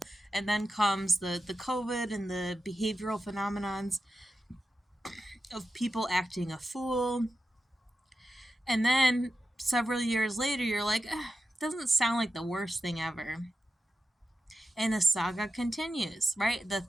And then comes the COVID and the behavioral phenomenons of people acting a fool. And then several years later, you're like, doesn't sound like the worst thing ever. And the saga continues, right? The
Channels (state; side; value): normal; both; correlation 0.91